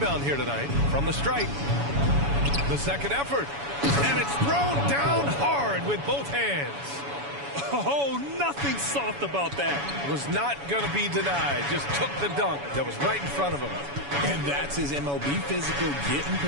here tonight from the stripe. The second effort. And it's thrown down hard with both hands. Oh, nothing soft about that. Was not going to be denied. Just took the dunk that was right in front of him. And that's his MO. Be physical, get in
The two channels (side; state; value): left; late; 7.1 ms